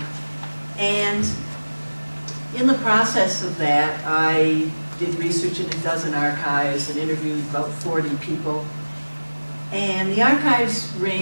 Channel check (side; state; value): both; inverted; correlation -1.00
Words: And in the process of that, I did research in a dozen archives and interviewed about 40 people. And the archives